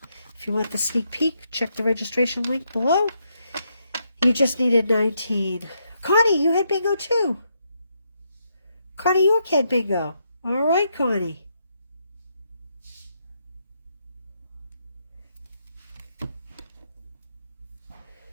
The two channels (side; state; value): both; inverted; correlation -0.79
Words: If you want the sneak peek, check the registration link below. You just needed 19. Connie, you had bingo too. Connie York had bingo. All right, Connie.